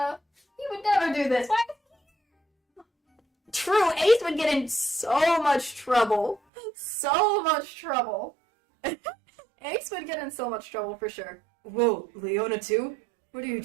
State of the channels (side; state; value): left; drops out; at 6.4 s